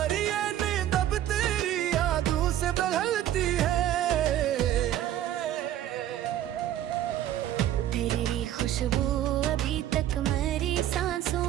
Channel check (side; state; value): left; quieter; 12.1 dB